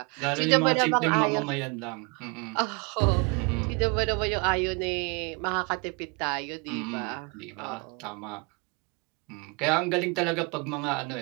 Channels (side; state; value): left; quieter; 31.3 dB